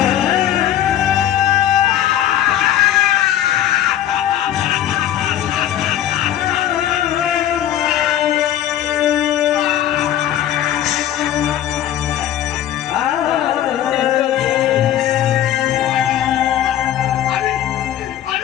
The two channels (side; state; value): right; quieter; 11.5 dB